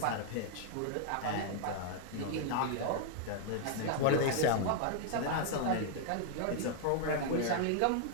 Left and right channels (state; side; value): different; both; correlation 0.00